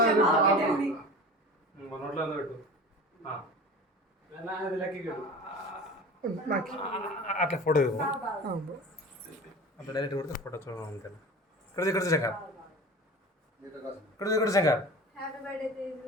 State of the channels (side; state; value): both; normal; correlation 0.36